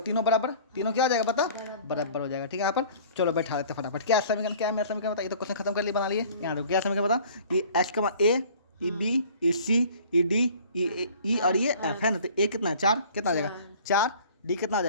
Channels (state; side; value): inverted; both; correlation -0.49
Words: तीनों बराबर, तीनों क्या हो जाएगा बता, बराबर हो जाएगा। ठीक है, यहाँ पर चलो बैठा लेते फटाफट, क्या समीकरण, क्या है मेरा समीकरण बता। ये तो क्वेश्चन खत्म कर लिए, बना लिए। यहाँ देखो क्या समीकरण बता, ये एच का मान ए, ई बी, ई सी, ई डी, ई और ये एफ है ना। तो ए कितना है, 4, कितना आ जाएगा 4, डी कितना आ